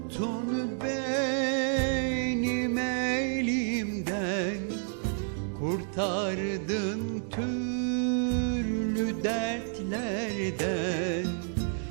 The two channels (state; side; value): silent; left; 58 dB below the other